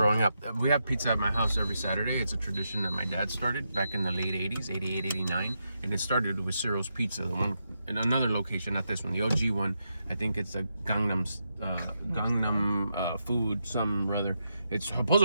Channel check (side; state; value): both; inverted; correlation -0.84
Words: up. We have pizza at my house every Saturday. It's a tradition that my dad started back in the late 80s, 88, 89. And it started with Ciro's Pizza, the one in another location, not this one, the OG one. I think it's a Gangnam food, some rather. It's